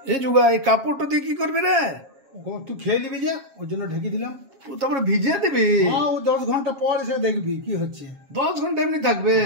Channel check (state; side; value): late; left; 7.3 ms